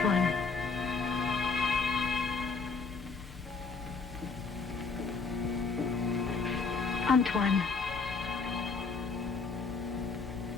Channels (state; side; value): quieter; right; 4.6 dB